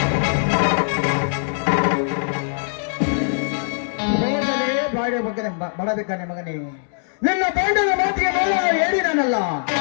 ಮಾಡಬೇಕಾನೆ ಮಗನೇ. ನಿನ್ನ ಗಂಡನ ಮಾತಿಗೆ ಹೇಳಿದನಲ್ಲ,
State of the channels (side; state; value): right; silent; digital silence